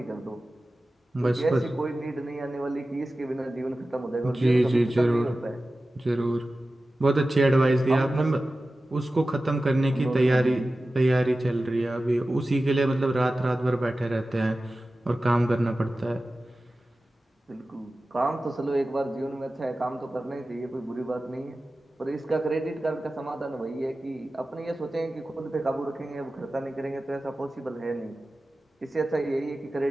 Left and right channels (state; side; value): normal; both; correlation 0.95